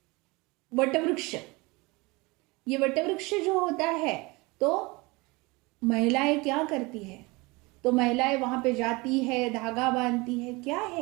वटवृक्ष, ये वटवृक्ष जो होता है तो महिलाएं क्या करती है, तो महिलाएं वहां पे जाती है, धागा बांधती है। क्या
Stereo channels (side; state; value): left; quieter; 24.7 dB